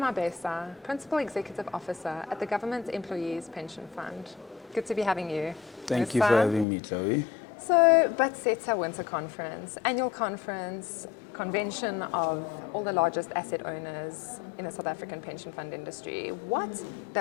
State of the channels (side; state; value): right; drops out; at 6.7 s